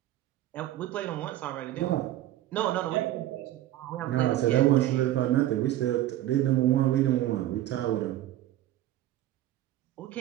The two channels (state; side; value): quieter; left; 13.9 dB